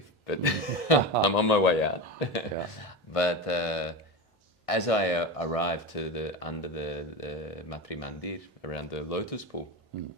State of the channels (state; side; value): normal; both; correlation 0.22